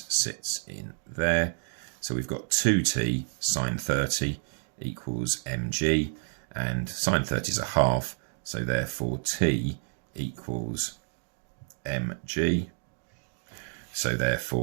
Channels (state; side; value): silent; left; 58 dB below the other